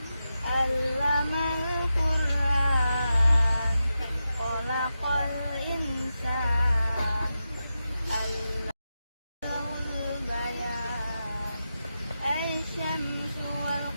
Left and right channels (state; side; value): inverted; both; correlation -0.90